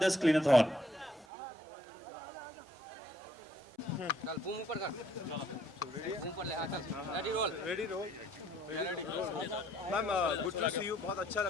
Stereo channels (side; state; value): both; normal; correlation 0.66